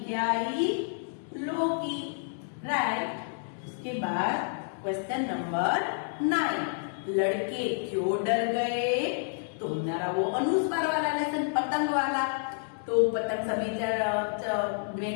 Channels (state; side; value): silent; right; digital silence